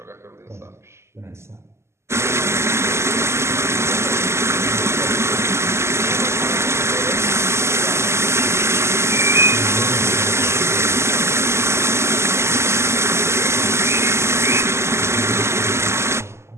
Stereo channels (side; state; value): left; late; 0.13 ms